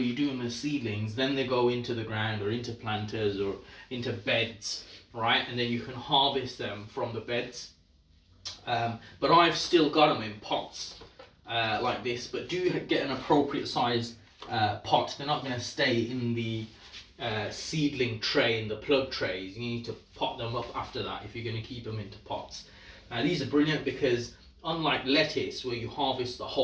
you do them as seedlings, then they go into the ground or into planters or into beds, right? And then you can harvest them from the beds. But I've still got them in pots like this, but do get an appropriate size pot. They're not going to stay in the seedling tray, in the plug trays. You need to pot them up after that if you're going to keep them into pots. Now these are brilliant because unlike lettuce, where you harvest the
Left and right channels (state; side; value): identical; both; correlation 1.00